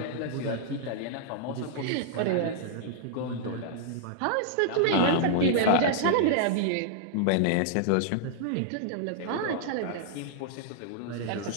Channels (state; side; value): different; both; correlation -0.01